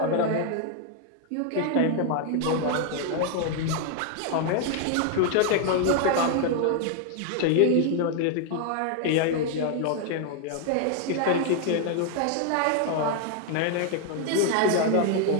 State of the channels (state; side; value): different; both; correlation 0.00